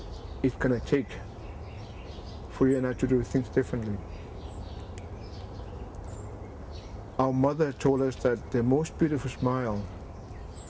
it's going to take for you and I to do things differently. Our mother told us that the most beautiful smile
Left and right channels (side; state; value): both; identical; correlation 1.00